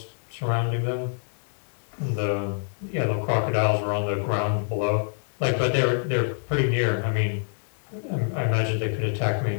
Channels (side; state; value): right; silent; digital silence